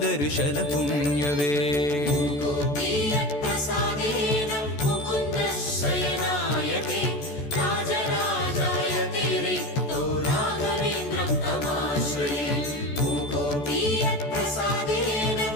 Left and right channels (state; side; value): late; right; 14 ms